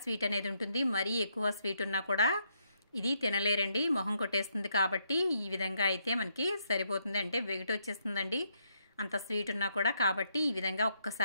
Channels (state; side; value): inverted; both; correlation -0.76